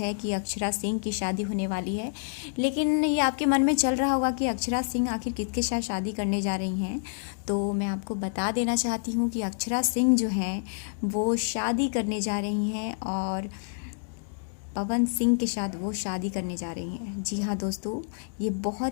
है कि अक्षरा सिंह की शादी होने वाली है। लेकिन ये आपके मन में चल रहा होगा कि अक्षरा सिंह आखिर किसके साथ शादी करने जा रही हैं। तो मैं आपको बता देना चाहती हूँ कि अक्षरा सिंह जो हैं वो शादी करने जा रही हैं और पवन सिंह के साथ वो शादी करने जा रही हैं। जी हाँ दोस्तों, ये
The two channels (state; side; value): silent; right; digital silence